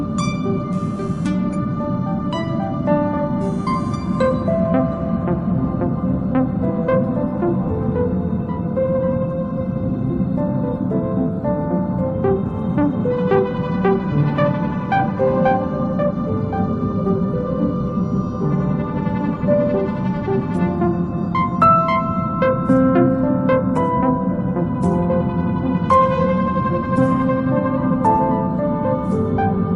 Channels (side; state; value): both; identical; correlation 1.00